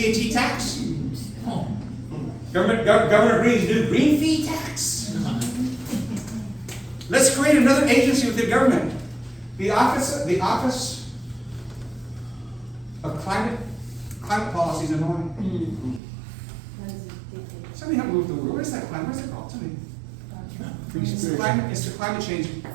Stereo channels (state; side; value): drops out; left; at 16.0 s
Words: tax. Governor Green's new green fee tax. Let's create another agency within government. The Office of Climate Policies in Hawaii. Somebody help me with the word. What is that climate? What's it called? Somebody. It's the climate change